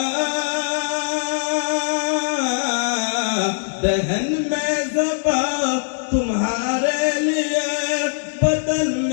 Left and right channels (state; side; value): silent; right; digital silence